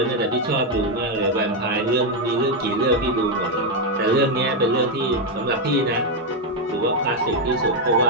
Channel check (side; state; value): both; normal; correlation 0.03